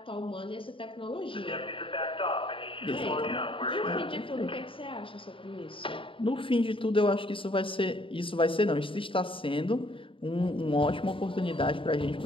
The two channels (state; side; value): late; right; 0.25 ms